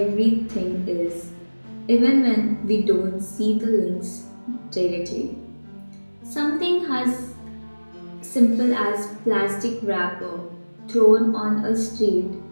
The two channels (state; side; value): inverted; both; correlation -1.00